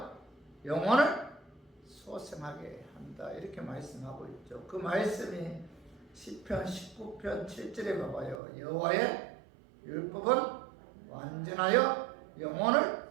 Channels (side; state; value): left; drops out; at 8.4 s